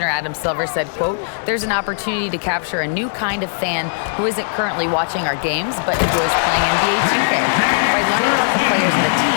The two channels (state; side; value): silent; right; digital silence